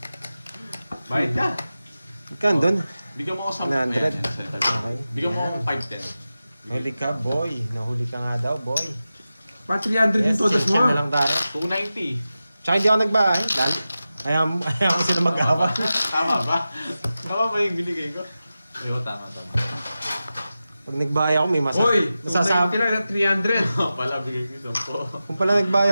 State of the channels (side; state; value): both; inverted; correlation -0.94